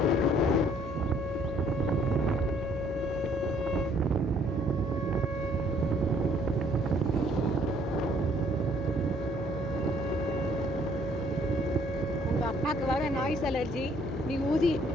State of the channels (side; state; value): left; noise; hum, 10 dB below the sound